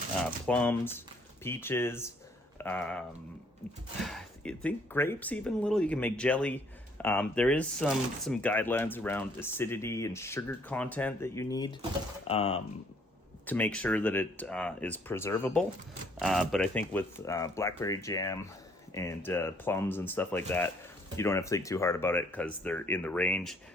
plums, peaches, I think grapes even a little. You can make jelly. There is some guidelines around acidity and sugar content that you need to make sure that it is preservable. But I think with blackberry jam and plums and stuff like that, you don't have to think too hard about it because they're in the range.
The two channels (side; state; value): both; normal; correlation 0.63